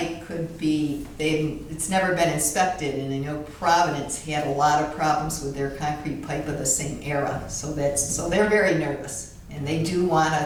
could be, it's never been inspected, and I know Providence had a lot of problems with their concrete pipe of the same era, so they're very nervous, and they do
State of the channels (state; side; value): identical; both; correlation 1.00